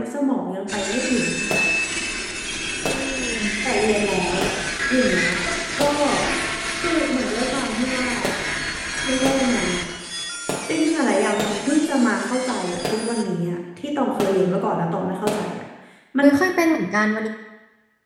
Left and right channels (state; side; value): identical; both; correlation 1.00